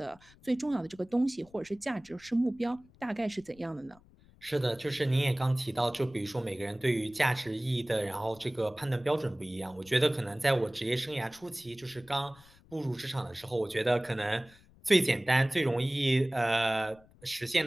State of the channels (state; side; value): noise; left; rumble, 26 dB below the sound